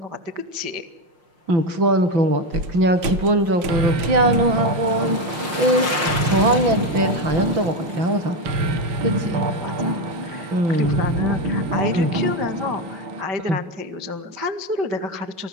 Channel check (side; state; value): left; late; 5.7 ms